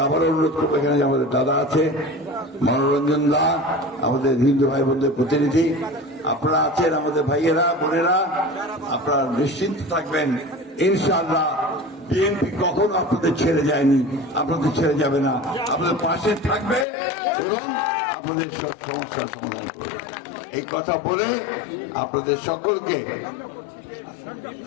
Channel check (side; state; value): right; drops out; at 16.9 s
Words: আবার অনুরোধ করবো, এখানে যে আমাদের দাদা আছে মনোরঞ্জন দা, আমাদের হিন্দু ভাই বোনদের প্রতিনিধি, আপনারা আছেন আমাদের ভাইয়েরা বোনেরা, আপনারা নিশ্চিন্ত থাকবেন ইনশাআল্লাহ বিএনপি কখনো আপনাদের ছেড়ে যায়নি, আপনাদের ছেড়ে যাবে না, আপনাদের পাশে থাকবে এবং আপনাদের সব সমস্যার সমাধান করবে। এই কথা বলে আপনাদের সকলকে